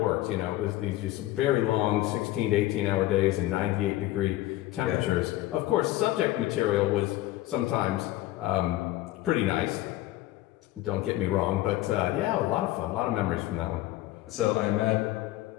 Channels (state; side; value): quieter; right; 16.1 dB